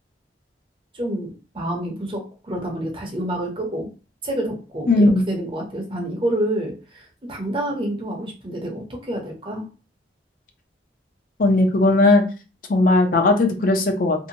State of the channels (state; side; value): normal; both; correlation 0.55